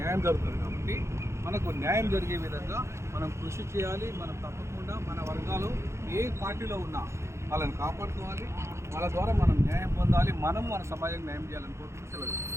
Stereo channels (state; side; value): late; left; 0.13 ms